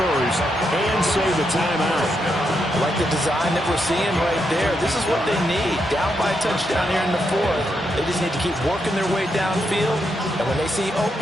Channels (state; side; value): normal; both; correlation 0.81